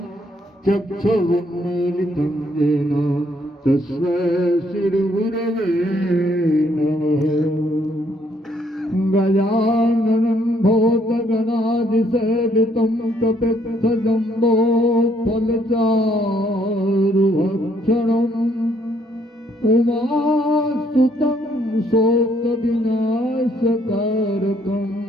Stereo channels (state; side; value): normal; both; correlation 0.68